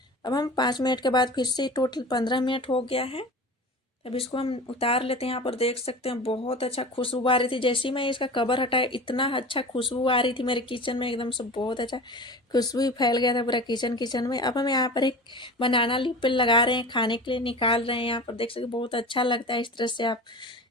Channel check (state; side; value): normal; both; correlation 0.34